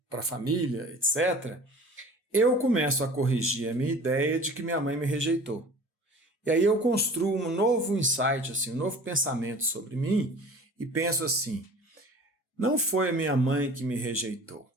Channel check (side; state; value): both; normal; correlation 0.43